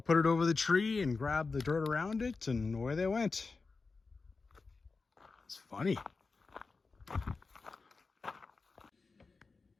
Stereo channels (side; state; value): right; quieter; 4.2 dB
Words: it over the tree and grabbed the dirt around it, and away they went. It's funny.